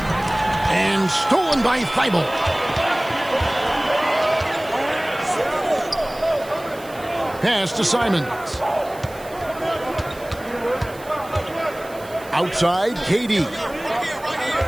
And stolen by Thibault. Pass to Simons. Outside, KD.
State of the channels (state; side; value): noise; right; hiss, 21 dB below the sound